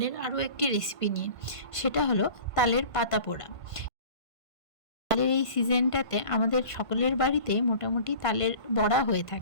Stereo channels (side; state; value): right; late; 1.5 ms